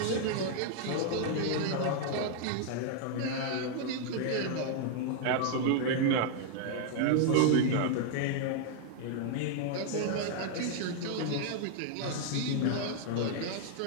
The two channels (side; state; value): both; different; correlation 0.00